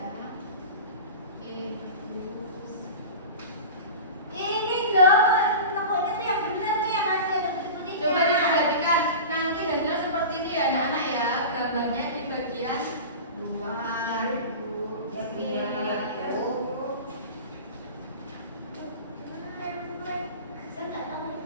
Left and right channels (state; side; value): inverted; both; correlation -0.32